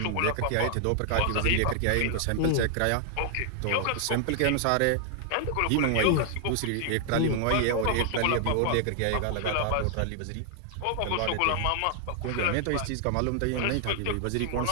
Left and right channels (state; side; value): different; both; correlation 0.00